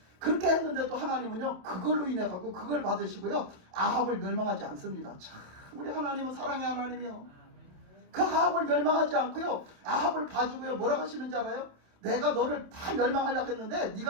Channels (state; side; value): late; left; 27 ms